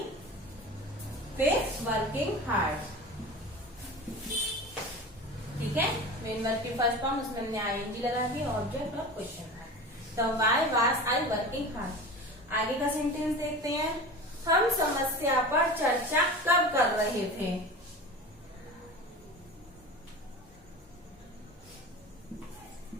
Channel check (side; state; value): both; normal; correlation 0.33